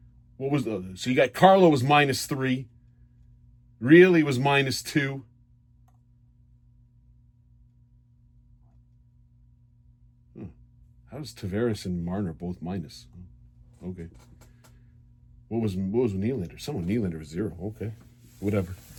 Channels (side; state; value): both; identical; correlation 1.00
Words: So you got Carlo was -3. Really was -2. How's Tavares and Marner both minus? Okay. What was Nylander? Someone Nylander was 0. Okay. Whatever.